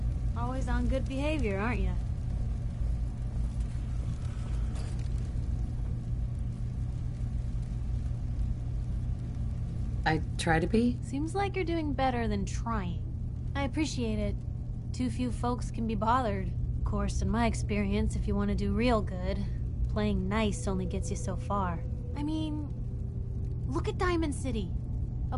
Always on good behavior, aren't you? I try to be. Seems like you're doing better than trying. I appreciate it. Too few folks can be bothered. Of course, in my experience, if you want to do real good, playing nice only gets you so far. I mean, look at Diamond City. A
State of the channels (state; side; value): identical; both; correlation 1.00